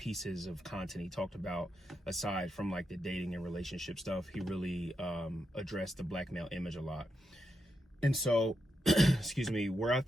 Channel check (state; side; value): normal; both; correlation 0.84